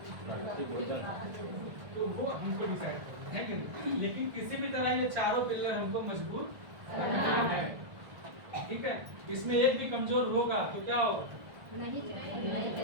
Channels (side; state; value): left; late; 1.5 ms